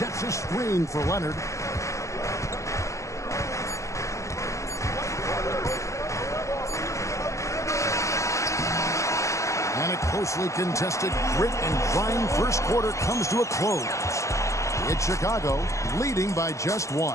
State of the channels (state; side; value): late; right; 0.15 ms